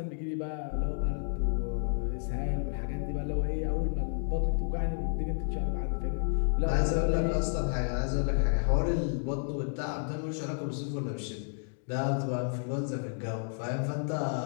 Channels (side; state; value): right; silent; digital silence